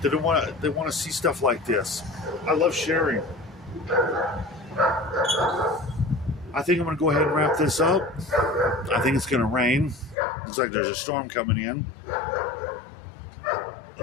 They want to see stuff like this. I love sharing. I think I'm going to go ahead and wrap this up. I think it's going to rain. Looks like there's a storm coming in. I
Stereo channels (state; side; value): drops out; right; at 10.2 s